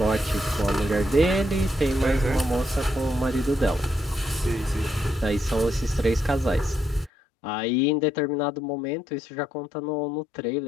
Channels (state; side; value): drops out; right; at 7.1 s